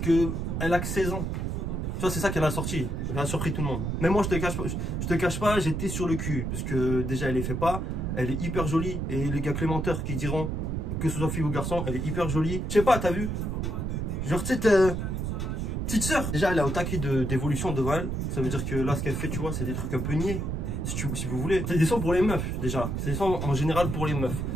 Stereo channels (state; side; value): noise; right; rumble, 2 dB below the sound